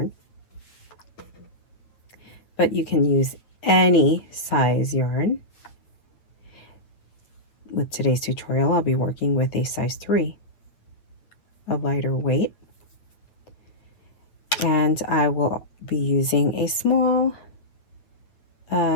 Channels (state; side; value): late; right; 8.8 ms